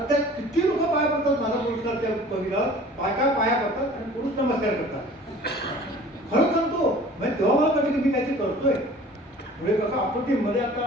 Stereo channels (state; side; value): normal; both; correlation 0.46